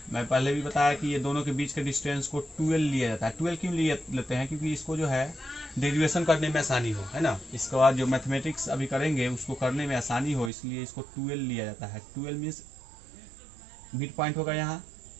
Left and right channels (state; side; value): drops out; left; at 10.5 s